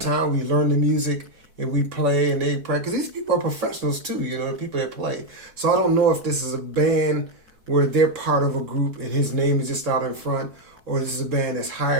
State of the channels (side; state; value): left; late; 4.7 ms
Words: we learn the music and we play and they practice. These people are professionals too, you know, the people that play. So I don't know if this is a band where they're part of a group and his name is just out in front, or this is a band that's